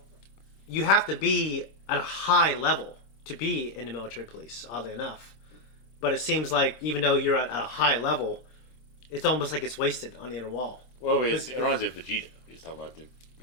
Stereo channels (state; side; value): late; right; 26 ms